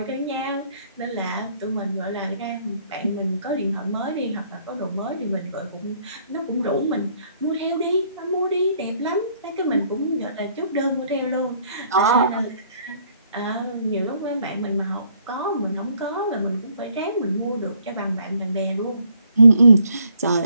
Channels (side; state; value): both; inverted; correlation -0.65